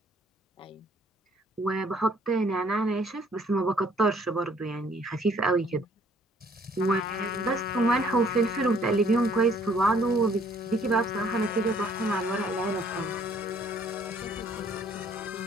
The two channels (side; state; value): both; normal; correlation 0.61